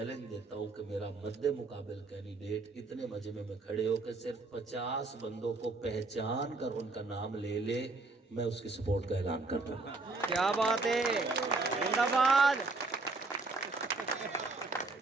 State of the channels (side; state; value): left; quieter; 3.5 dB